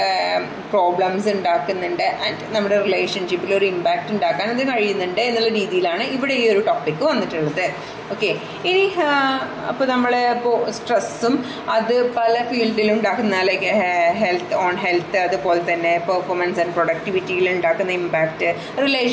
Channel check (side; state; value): both; identical; correlation 1.00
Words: പ്രോബ്ലംസ് ഉണ്ടാക്കുന്നുണ്ട്. ആൻഡ് നമ്മുടെ റിലേഷൻഷിപ്പിൽ ഒരു ഇമ്പാക്റ്റ് ഉണ്ടാക്കാൻ അത് കഴിയുന്നുണ്ട് എന്നുള്ള രീതിയിലാണ് ഇവിടെ ഈ ഒരു ടോപ്പിക്ക് വന്നിട്ടുള്ളത്. ഓക്കെ, ഇനി അപ്പോൾ നമ്മൾ ഇപ്പോൾ സ്ട്രെസ്സും അത് പല ഫീൽഡിലും ഉണ്ടാക്കുന്ന, ലൈക്ക് ഹെൽത്ത്, അതുപോലെ തന്നെ പെർഫോമൻസ് ആൻഡ് പ്രൊഡക്ടിവിറ്റിയിൽ ഉണ്ടാക്കുന്ന ഇമ്പാക്റ്റ്,